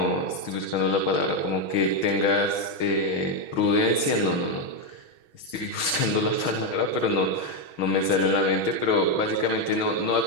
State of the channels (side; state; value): right; late; 6.2 ms